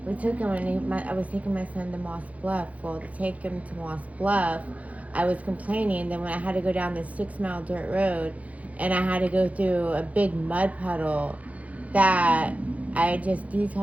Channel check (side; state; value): left; late; 0.068 ms